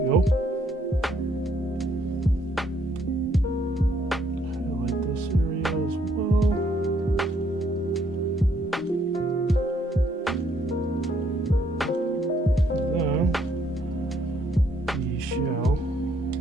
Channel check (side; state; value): both; normal; correlation 0.69